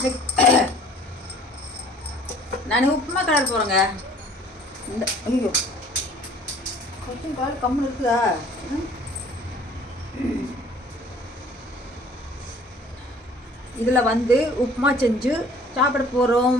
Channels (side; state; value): both; normal; correlation 0.52